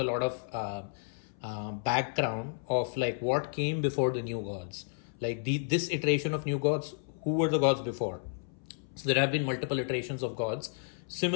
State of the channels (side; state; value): right; silent; 57 dB below the other